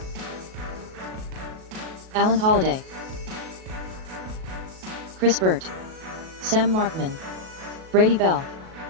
Alan Holliday. Chris Burt. Sam Markman. Brady Bell.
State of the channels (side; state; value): left; late; 37 ms